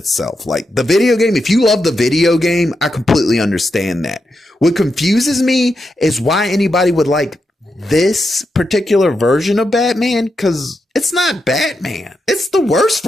Like the video game, if you love the video game, I completely understand that. What confuses me is why anybody would like this particular version of Batman, because it's not Batman. It's the worst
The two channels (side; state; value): both; normal; correlation 0.85